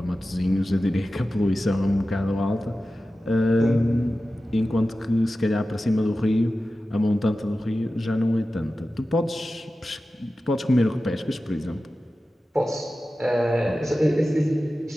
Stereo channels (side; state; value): both; normal; correlation 0.94